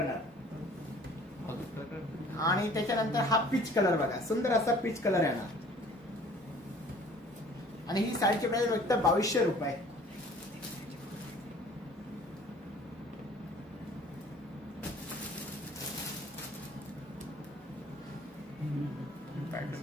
आणि त्याच्यानंतर हा पीच कलर बघा सुंदर असा पीच कलर येणार. आणि ही साडीची प्राइस फक्त 2200 रुपये.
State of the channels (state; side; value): normal; both; correlation 0.51